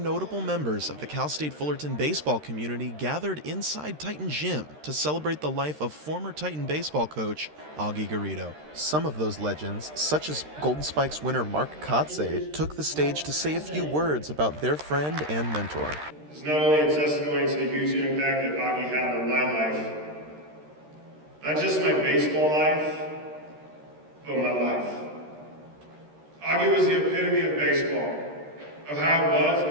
notable members of the Cal State Fullerton baseball community gathered inside Titan Gym to celebrate the life of former Titan baseball coach Augie Garrido. Some of those legends, such as Golden Spikes winner Mark Kotze, took the stage to say a few words about their friend and mentor. It's not only a testimony to the huge impact that Augie had on my life, not just my baseball life, but my life. Augie was the epitome of baseball, of how it was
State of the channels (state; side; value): late; left; 13 ms